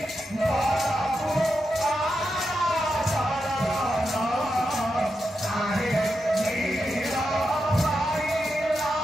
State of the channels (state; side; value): normal; both; correlation 0.87